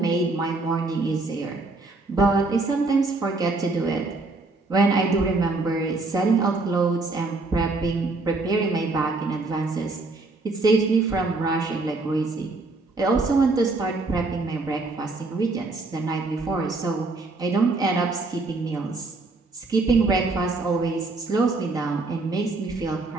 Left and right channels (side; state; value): left; quieter; 3.4 dB